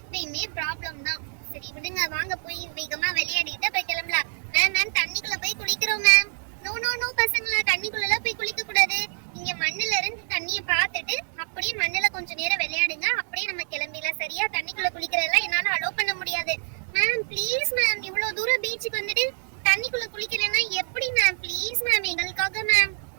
ப்ராப்ளம் தான். சரி விடுங்க, வாங்க போய் வேகமா விளையாடிட்டு போய் கிளம்பலாம். மேம் மேம் தண்ணிக்குள்ள போய் குளிக்கிறோம் மேம். நோ நோ நோ பசங்களா, தண்ணிக்குள்ள போய் குளிக்க கூடாது. இங்க மண்ணுல இருந்து தண்ணிய பார்த்துட்டு அப்படியே மண்ணுல கொஞ்ச நேரம் விளையாடுங்க, அப்படியே நம்ம கிளம்பிடலாம். சரியா? தண்ணிக்குள்ள குளிக்கிறதெல்லாம் என்னால அலோவ் பண்ண முடியாது. மேம் ப்ளீஸ் மேம், இவ்வளவு தூரம் பீச்சுக்கு வந்துட்டு தண்ணிக்குள்ள குளிக்கலன்னா எப்படி மேம்? ப்ளீஸ் மேம் எங்களுக்காக மேம்.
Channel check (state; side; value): silent; left; digital silence